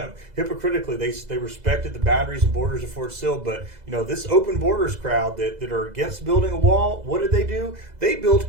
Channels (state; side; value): late; left; 2.0 ms